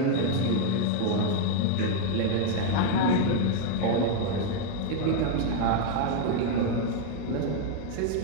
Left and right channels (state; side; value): different; both; correlation 0.01